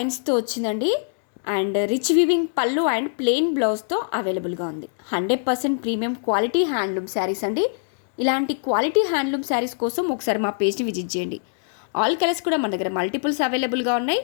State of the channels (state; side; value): silent; right; digital silence